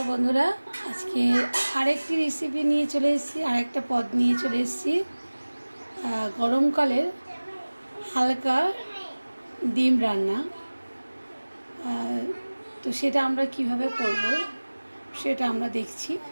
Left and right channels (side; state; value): both; inverted; correlation -1.00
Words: बंधुरा आज के आरेकटी रेसिपि निये चले एसेछि आरेकटा पद निये चले एसेछि गरम काले हालका डिम रान्ना तो सेटा आमरा किभाबे करब सेटा आमरा देखछि।